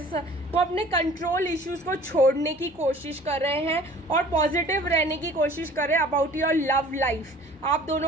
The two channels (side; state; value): both; normal; correlation 0.48